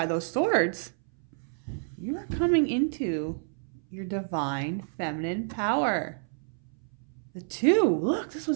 those swords. You are coming into your divine feminine power. The 2. Look, this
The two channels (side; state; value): left; silent; 59 dB below the other